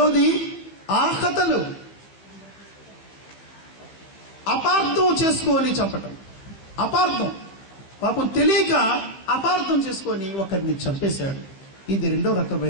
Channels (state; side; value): late; right; 15 ms